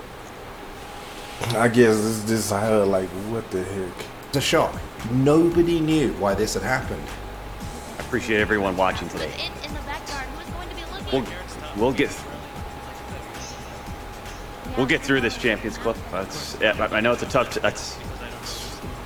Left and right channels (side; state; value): both; identical; correlation 1.00